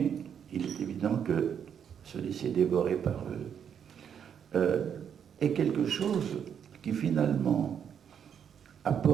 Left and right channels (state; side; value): quieter; left; 8.1 dB